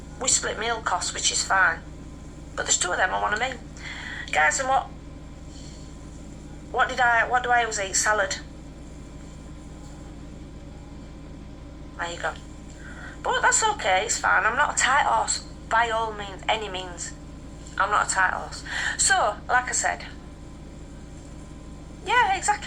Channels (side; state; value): both; identical; correlation 1.00